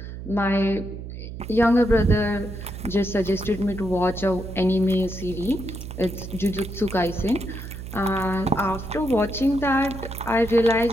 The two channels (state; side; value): noise; right; hum, 10 dB below the sound